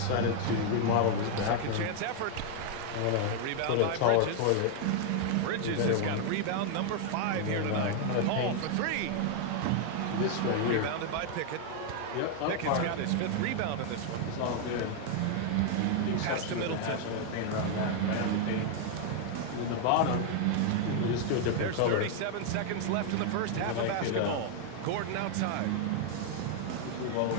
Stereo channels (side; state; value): both; different; correlation 0.00